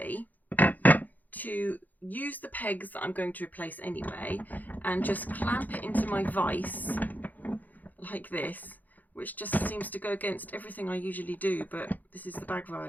to use the pegs that I'm going to replace anyway and just clamp it into my vise like this, which just seems to go against everything I usually do, but this is the bag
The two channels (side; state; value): right; late; 0.082 ms